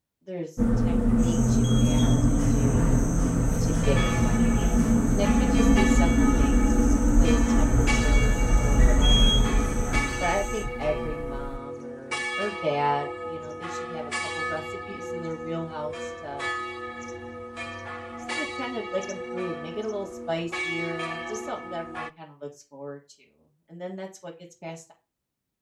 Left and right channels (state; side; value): identical; both; correlation 1.00